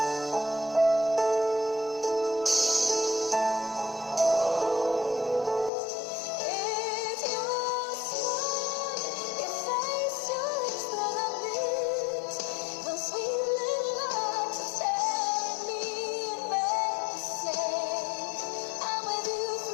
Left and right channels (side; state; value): right; drops out; at 5.7 s